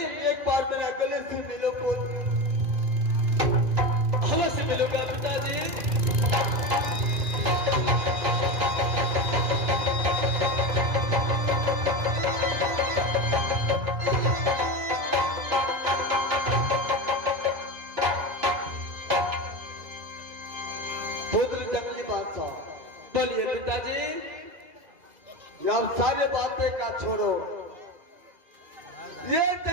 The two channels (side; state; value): left; late; 2.5 ms